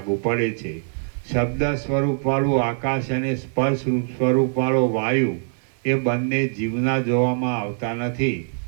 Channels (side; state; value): left; silent; digital silence